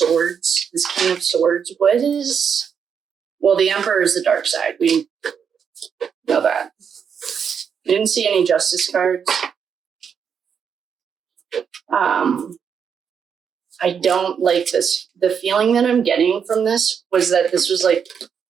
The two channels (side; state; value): left; quieter; 7.1 dB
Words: this King of Swords. What is... Well, the Emperor is the dark side. We know that. I didn't see any Justice cards. I don't like this. The feeling that I'm getting from this was that this was like